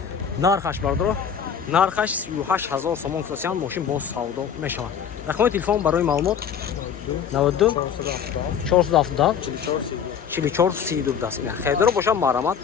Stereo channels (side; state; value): right; quieter; 7.7 dB